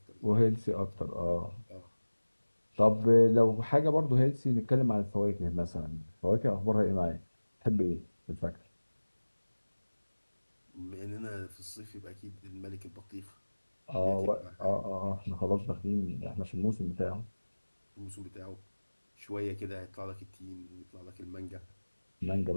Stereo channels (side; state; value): both; inverted; correlation -1.00